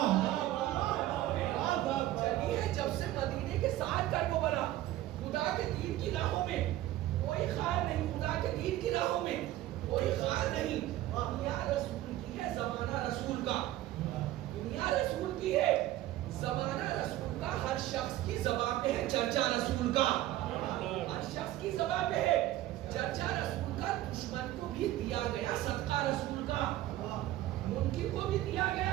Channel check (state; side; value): quieter; left; 14.7 dB